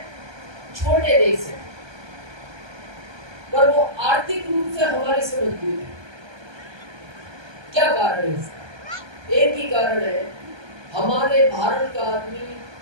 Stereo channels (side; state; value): left; late; 1.2 ms